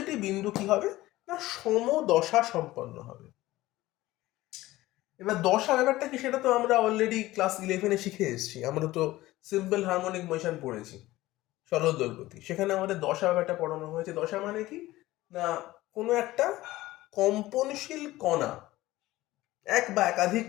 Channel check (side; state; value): right; quieter; 17.3 dB